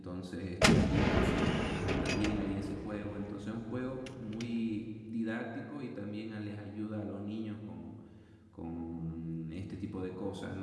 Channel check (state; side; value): identical; both; correlation 1.00